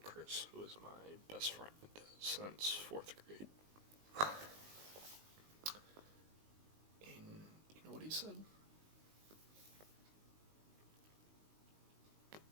who is my best friend since 4th grade. And you know what he said?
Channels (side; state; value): left; late; 19 ms